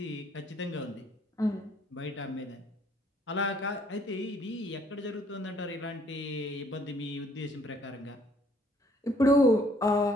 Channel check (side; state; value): both; normal; correlation 0.62